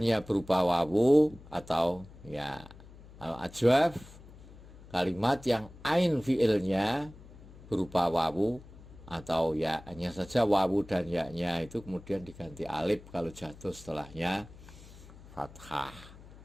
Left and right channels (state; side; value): noise; left; hum, 19 dB below the sound